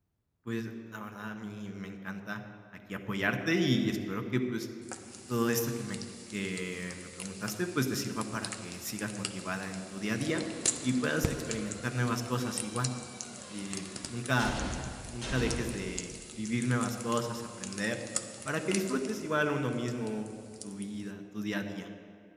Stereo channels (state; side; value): identical; both; correlation 1.00